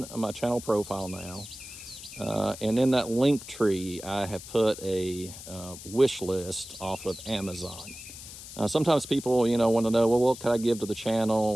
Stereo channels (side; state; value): left; noise; hiss, 14 dB below the sound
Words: my channel profile now. And in that link tree, I have put a wish list off of Amazon. Sometimes people, you know, want to know, well, what can I give to the channel?